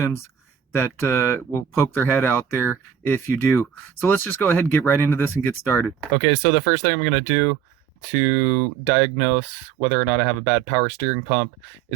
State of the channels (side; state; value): left; quieter; 8.2 dB